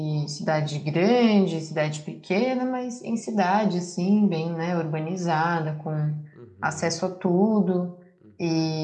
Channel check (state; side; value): identical; both; correlation 1.00